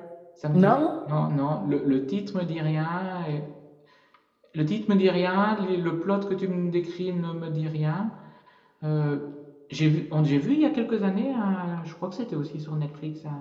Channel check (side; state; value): both; identical; correlation 1.00